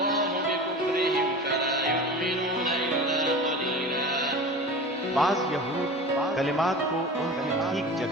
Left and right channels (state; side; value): normal; both; correlation 0.34